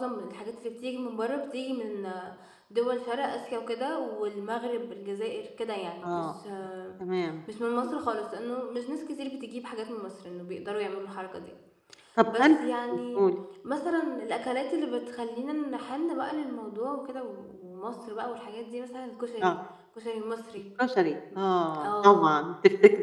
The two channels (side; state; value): both; identical; correlation 1.00